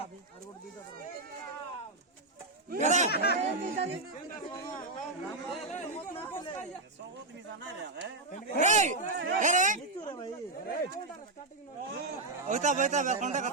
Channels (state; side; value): quieter; left; 3.1 dB